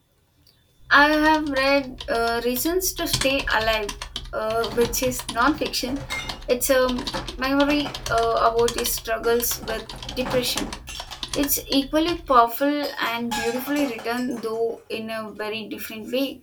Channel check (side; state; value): both; identical; correlation 1.00